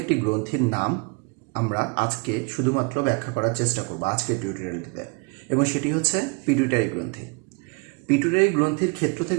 একটি গ্রন্থির নাম আমরা আজকে শুধুমাত্র ব্যাখ্যা করার চেষ্টা করব আজকের টিউটোরিয়ালটিতে, এবং সেটি হচ্ছে পিটুইটারি গ্রন্থি। পিটুইটারি গ্রন্থির ক্ষেত্র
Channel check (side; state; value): left; quieter; 30.0 dB